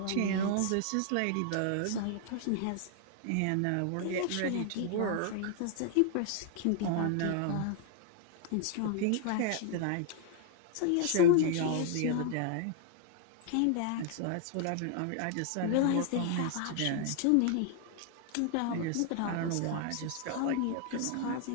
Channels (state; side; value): different; both; correlation 0.00